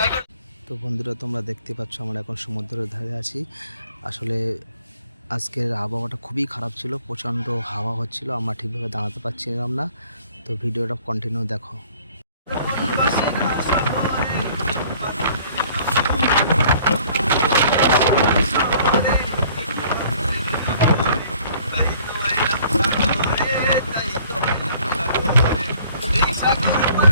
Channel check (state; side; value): inverted; both; correlation -0.56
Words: করে। তো বন্ধুরা, তোমরা দেখতে পাচ্ছ আমরা এখন সমুদ্রের ধারে আছি। আসলে আজকের আবহাওয়াটা খুবই খারাপ ছিল, প্রচণ্ড হাওয়া হচ্ছিল, আমরা ঠিকভাবে দাঁড়াতে পারছিলাম না। তো ভিডিওটা কন্টিনিউ দেখো।